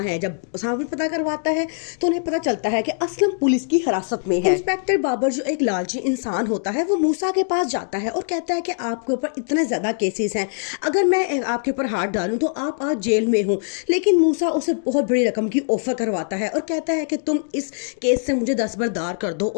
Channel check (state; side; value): silent; right; digital silence